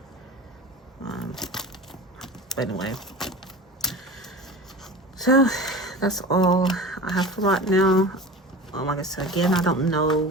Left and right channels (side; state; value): both; normal; correlation 0.34